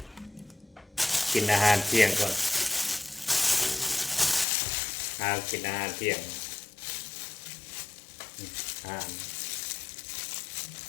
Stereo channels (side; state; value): right; drops out; at 4.5 s